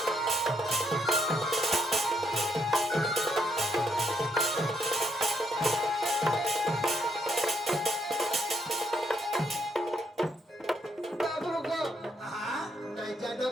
বাবু গো হ্যাঁ নাই জানো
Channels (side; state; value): both; normal; correlation 0.75